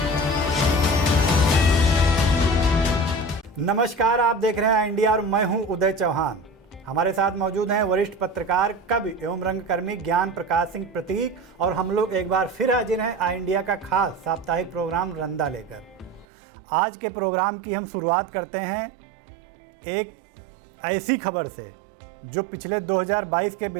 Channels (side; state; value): left; drops out; at 16.2 s